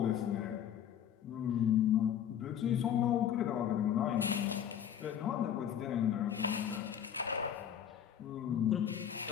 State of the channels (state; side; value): quieter; right; 9.4 dB